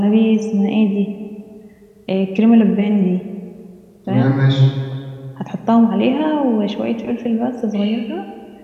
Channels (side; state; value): both; identical; correlation 1.00